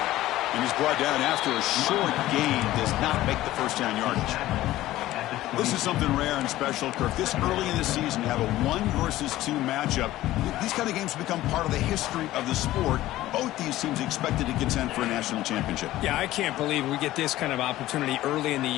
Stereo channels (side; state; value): right; quieter; 15.5 dB